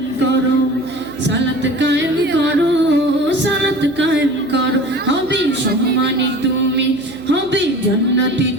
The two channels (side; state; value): right; noise; hum, 21 dB below the sound